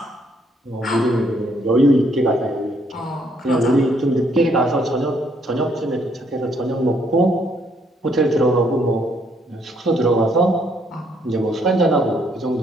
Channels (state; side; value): normal; both; correlation 0.69